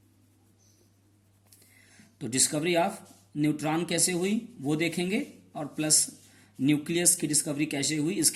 तो डिस्कवरी ऑफ न्यूट्रॉन कैसे हुई वो देखेंगे, और प्लस न्यूक्लियस की डिस्कवरी कैसे हुई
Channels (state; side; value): identical; both; correlation 1.00